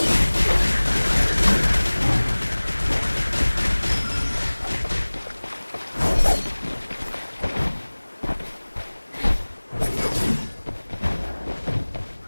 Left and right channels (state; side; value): inverted; both; correlation -1.00